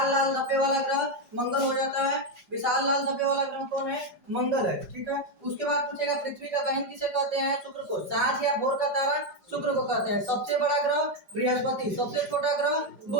लाल धब्बे वाला ग्रह मंगल हो जाता है। विशाल लाल धब्बे वाला ग्रह कौन है? मंगल है, ठीक है। उसके बाद पूछेगा पृथ्वी का बहन किसे कहते हैं? शुक्र को। सांझ या भोर का तारा शुक्र को कहते हैं। सबसे बड़ा ग्रह बृहस्पति, सबसे छोटा ग्रह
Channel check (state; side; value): late; left; 4.3 ms